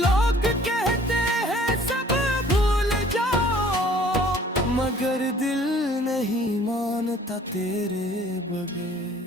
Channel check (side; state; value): both; normal; correlation 0.54